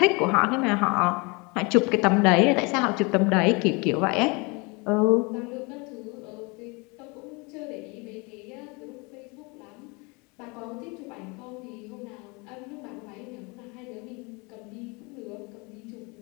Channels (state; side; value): quieter; right; 28.5 dB